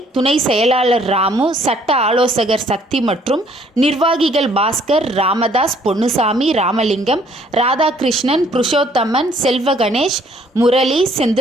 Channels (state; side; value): normal; both; correlation 0.62